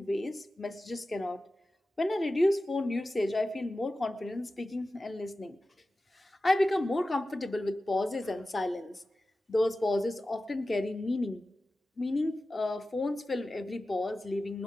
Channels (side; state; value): both; normal; correlation 0.95